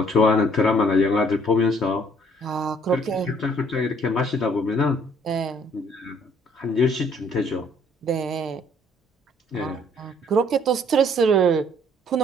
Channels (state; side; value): normal; both; correlation 0.61